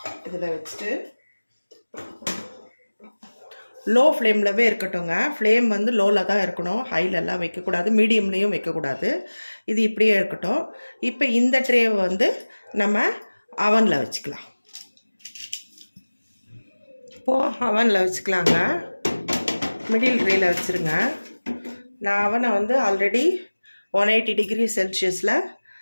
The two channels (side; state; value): both; inverted; correlation -1.00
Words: இதில் வச்சுட்டு லோ ஃப்ளேம்லவே இருக்கட்டும்ங்க. ஃப்ளேம் வந்து லோவில் தான் இருக்கணும், ஹைலெல்லாம் வைக்கக்கூடாது, மீடியம்லேயும் வைக்கக்கூடாது. இது இப்படியே இருக்கட்டும். இப்போ இந்த ட்ரேவை வந்து நம்ம அவனில் வச்சுக்கலாம். இப்போது அவனில் வச்சுக்கலாங்க. மிடில் ட்ரேயில் வச்சுருங்க. நான் அவனை வந்து ஆல்ரெடி 180 டிகிரி செல்சியஸில்